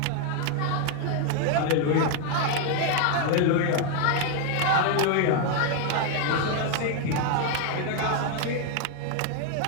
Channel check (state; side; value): different; both; correlation 0.00